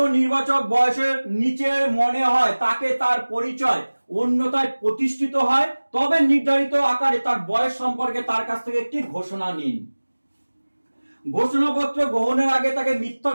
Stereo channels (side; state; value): both; inverted; correlation -1.00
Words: নির্বাচক বয়সের নিচে মনে হয় তাকে তার পরিচয় অন্যথায় প্রতিষ্ঠিত হয়, তবে নির্ধারিত আকারে তার বয়স সম্পর্কে তার কাছ থেকে একটি ঘোষণা নিন। ঘোষণাপত্র গ্রহণের আগে তাকে মিথ্যা